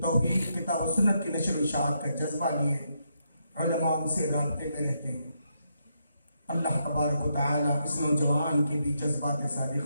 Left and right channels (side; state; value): both; inverted; correlation -0.79